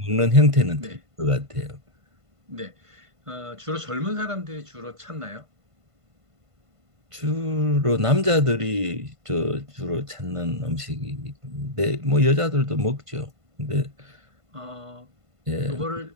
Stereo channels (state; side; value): late; left; 1.5 ms